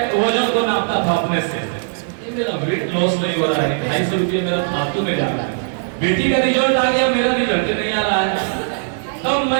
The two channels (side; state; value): left; silent; digital silence